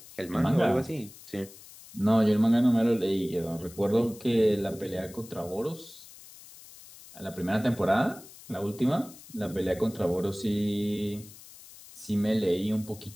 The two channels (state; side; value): noise; left; hiss, 19 dB below the sound